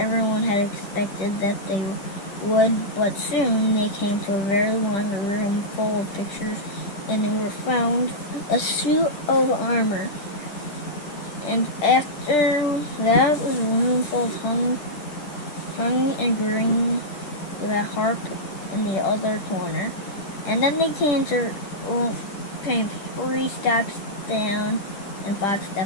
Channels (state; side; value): late; right; 10 ms